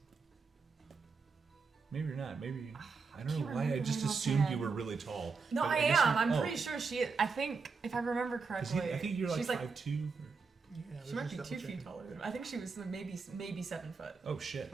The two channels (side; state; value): left; quieter; 4.8 dB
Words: Maybe you're not. Maybe I don't know can't why. I remember just my assumed offhand. you were really tall. No, But I guess am. you- I'm oh, pretty sure she is. I think, if I remember 'cause correctly, I think you're like she's 5'2". Yeah, She let's might be just 2 double feet check. taller than I think she was maybe 7 foot. Oh shit.